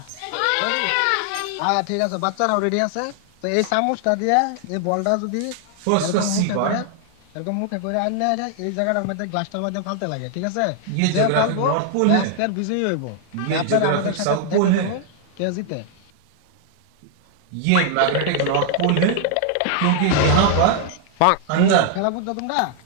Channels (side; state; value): both; different; correlation 0.00